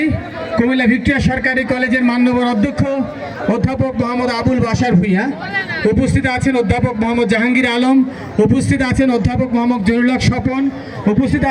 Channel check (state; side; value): identical; both; correlation 1.00